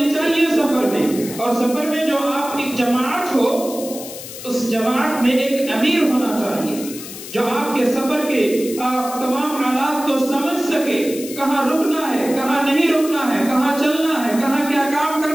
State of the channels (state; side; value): noise; left; hiss, 12 dB below the sound